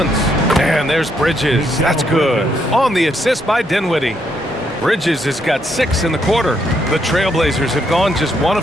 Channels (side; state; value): both; normal; correlation 0.75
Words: And there's Bridges. That's good. On the assist by Dinwiddie. Bridges has got 6 in the quarter. The Trailblazers have gone just 1